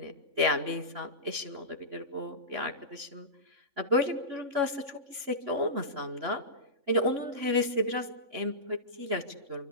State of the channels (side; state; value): left; late; 3.6 ms